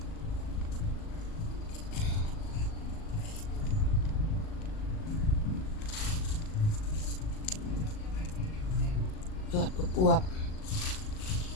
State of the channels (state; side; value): late; right; 38 ms